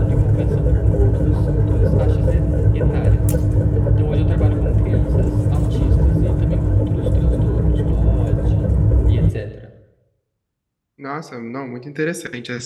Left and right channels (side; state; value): both; identical; correlation 1.00